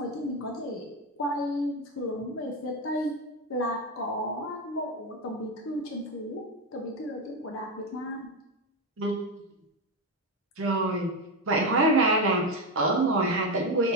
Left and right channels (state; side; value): normal; both; correlation 0.11